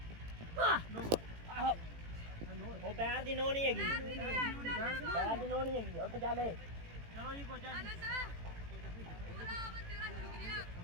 ਉਹ ਪੈਰ ਦੀ ਨੋ ਨਹੀਂ ਹੈਗੀ ਪੈਰ ਦੀ ਨੋ ਨਹੀਂ ਹੈਗੀ ਉੱਠ ਚੱਲੇ ਚਲੋ ਜੀ ਕੋਚਾ ਜੀ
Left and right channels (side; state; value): left; late; 18 ms